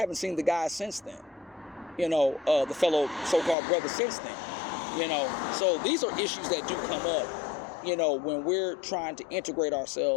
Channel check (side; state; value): right; drops out; at 3.6 s